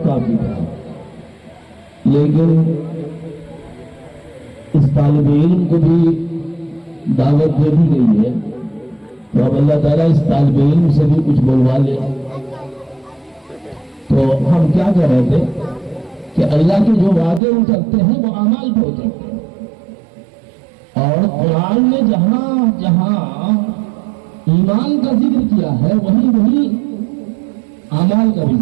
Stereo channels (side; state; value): left; drops out; at 17.4 s